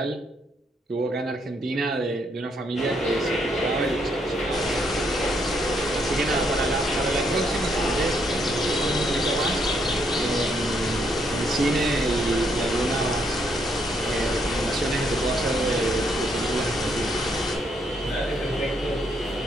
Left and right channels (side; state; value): both; normal; correlation 0.73